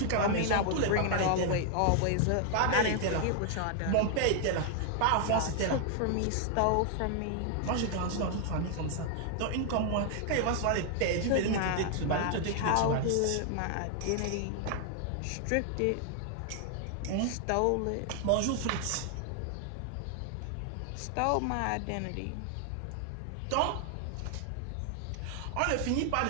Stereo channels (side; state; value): both; different; correlation 0.00